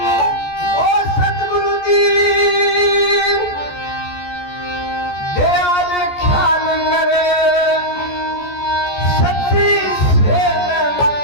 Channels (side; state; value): right; late; 14 ms